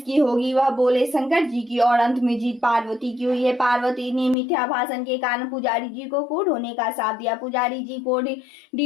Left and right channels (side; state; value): right; drops out; at 4.4 s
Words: होगी? वह बोले, शंकर जी की। और अंत में जीत पार्वती की हुई है। पार्वती ने मिथ्या भाषण के कारण पुजारी जी को कोढ़ होने का शाप दिया। पुजारी जी